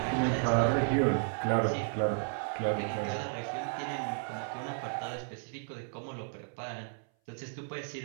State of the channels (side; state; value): left; silent; 56 dB below the other